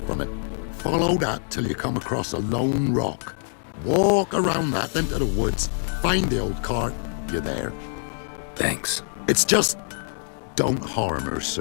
from it. Follow that till you come across a lone rock. Walk around that into the woods. Find the old cart. You're there. Thanks. It's just... don't harm her,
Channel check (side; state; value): right; silent; 62 dB below the other